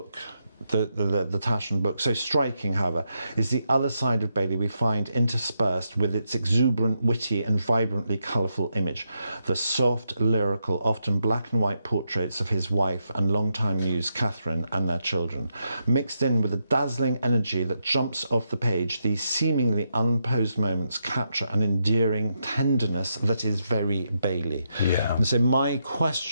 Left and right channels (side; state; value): both; inverted; correlation -0.82